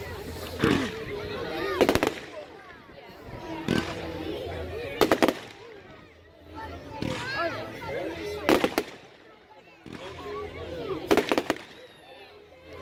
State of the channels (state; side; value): identical; both; correlation 1.00